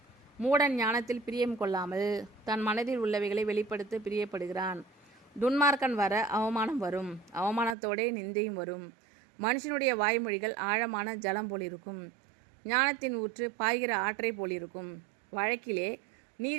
மூடன் ஞானத்தில் பிரியம் கொள்ளாமல் தன் மனதில் உள்ளவைகளை வெளிப்படுத்த பிரியப்படுகிறான். துன்மார்க்கன் வர அவமானம் வரும், அவமானத்தோடே நிந்தையும் வரும். மனுஷனுடைய வாய்மொழிகள் ஆழமான ஜலம் போலிருக்கும், ஞானத்தின் ஊற்று பாய்கிற ஆற்றை போலிருக்கும். வழக்கிலே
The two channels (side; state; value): left; drops out; at 7.8 s